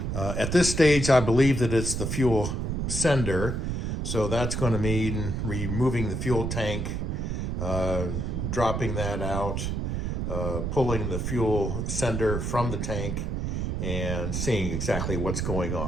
At this stage, I believe that it's the fuel sender. So that's going to mean removing the fuel tank, dropping that out, pulling the fuel sender from the tank, and seeing exactly what's going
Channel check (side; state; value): right; noise; rumble, 1 dB below the sound